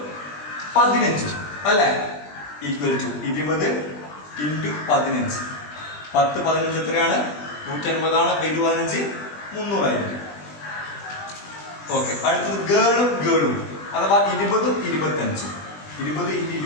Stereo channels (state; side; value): late; right; 20 ms